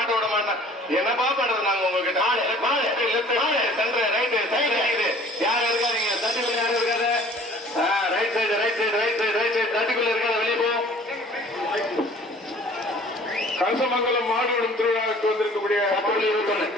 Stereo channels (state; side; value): normal; both; correlation 0.51